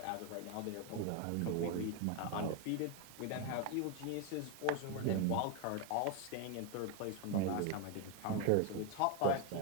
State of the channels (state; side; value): different; both; correlation 0.01